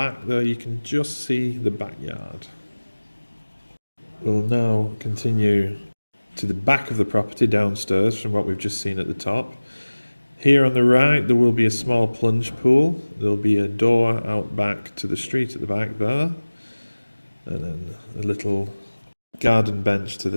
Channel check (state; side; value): inverted; both; correlation -1.00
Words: there you can just see the backyard. We'll now continue to the back of the property downstairs from what we've just seen at the top. Here on the right there will be a small plunge pool. There'll be a door out back to the street at the back there, and then a little garden bench to the